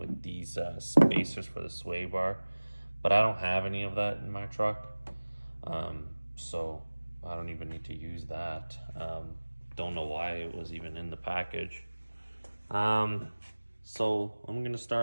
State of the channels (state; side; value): inverted; both; correlation -1.00